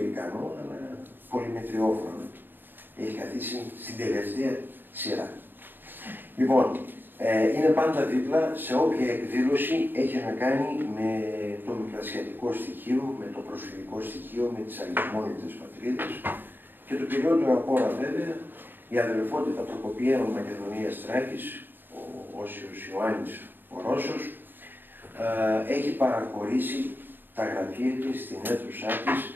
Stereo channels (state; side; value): late; left; 0.094 ms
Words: αλλά πολυμετριόφρονο. Έχει καθίσει στην τελευταία σειρά. Λοιπόν, είναι πάντα δίπλα σε όποια εκδήλωση έχει να κάνει με το μικρασιατικό στοιχείο, με το προσφυγικό στοιχείο, με τις αλυσμόνητες πατρίδες και το κυριότερο απ' όλα βέβαια η αδελφότητα Προκοπιαίων Μακεδονίας Θράκης, ο Όσιος Ιωάννης ο Ρώσος, έχει παραχωρήσει τα γραφεία της στην αίθουσά της